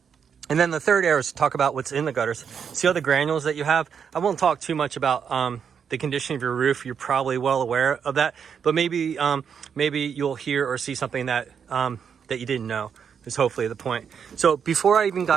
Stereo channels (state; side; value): quieter; left; 7.2 dB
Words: And then the third arrow is to talk about what's in the gutters. See all the granules that you have? I won't talk too much about the condition of your roof. You're probably well aware of that, but maybe you'll hear or see something that that you didn't know is hopefully the point. So before I even